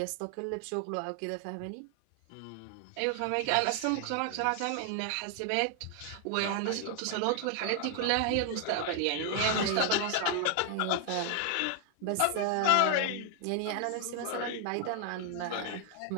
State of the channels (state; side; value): different; both; correlation 0.00